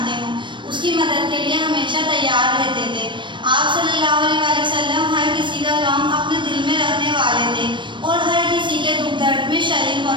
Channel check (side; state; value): left; late; 0.23 ms